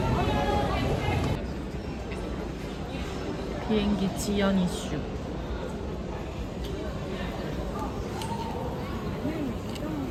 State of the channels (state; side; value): identical; both; correlation 1.00